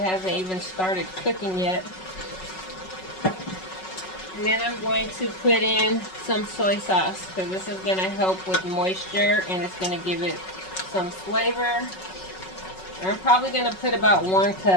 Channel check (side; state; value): right; late; 5.4 ms